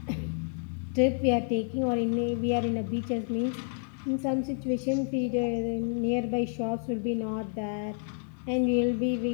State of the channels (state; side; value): silent; right; 58 dB below the other